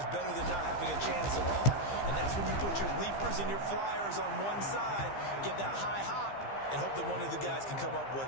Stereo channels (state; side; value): late; right; 15 ms